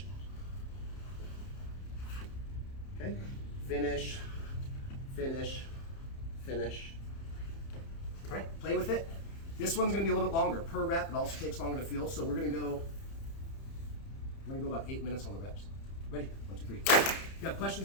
Okay? Finish, finish, finish. All right, play with it. This one's going to be a little bit longer per rep. It also takes longer to feel, so we're going to go about 8 minutes on the reps. Ready? 1, 2, 3. If you have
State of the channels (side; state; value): right; late; 30 ms